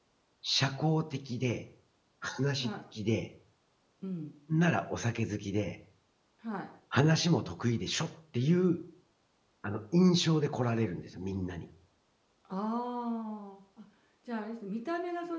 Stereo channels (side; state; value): both; identical; correlation 1.00